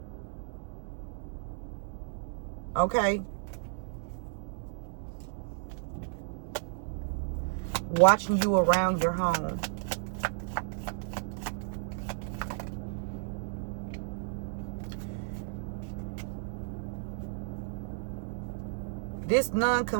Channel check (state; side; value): silent; left; digital silence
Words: Okay? Watching you around your home. This